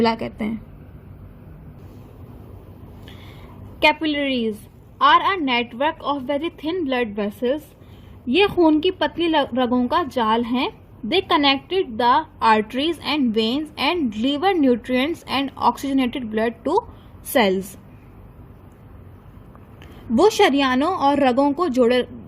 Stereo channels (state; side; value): identical; both; correlation 1.00